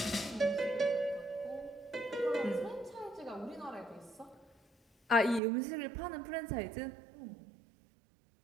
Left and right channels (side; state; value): left; drops out; at 5.4 s